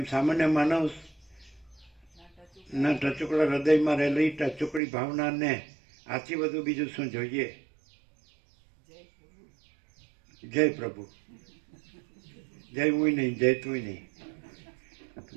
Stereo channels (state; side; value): drops out; left; at 4.8 s